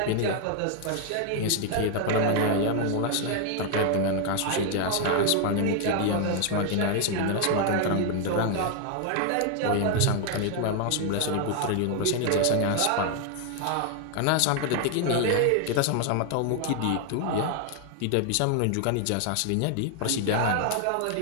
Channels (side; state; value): both; different; correlation 0.00